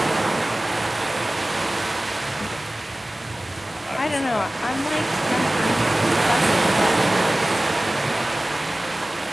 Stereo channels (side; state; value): both; normal; correlation 0.97